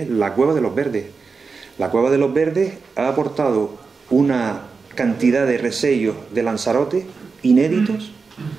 la Cueva de los Verdes. La Cueva de los Verdes ha aportado una cantidad de resellos de Lanzarote inéditos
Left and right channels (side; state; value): left; quieter; 4.8 dB